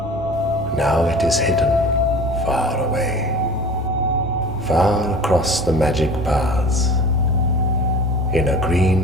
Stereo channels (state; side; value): noise; right; rumble, 18 dB below the sound